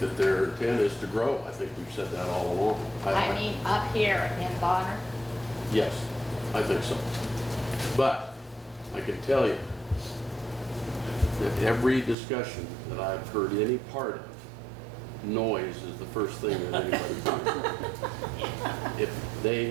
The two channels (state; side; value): drops out; left; at 12.2 s